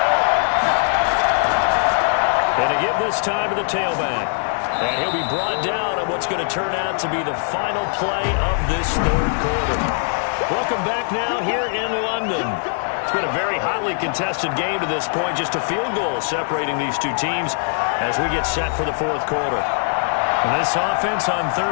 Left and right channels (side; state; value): right; silent; 60 dB below the other